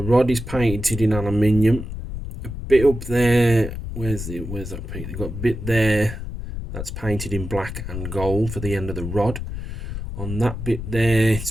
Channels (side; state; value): left; noise; rumble, 7 dB below the sound